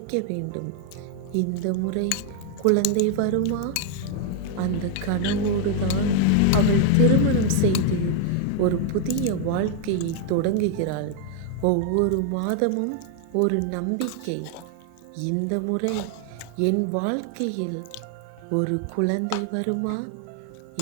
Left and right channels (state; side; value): different; both; correlation 0.00